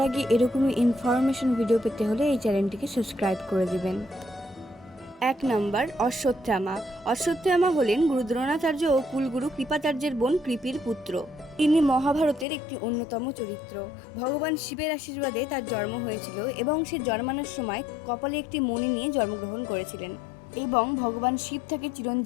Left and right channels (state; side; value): drops out; right; at 12.5 s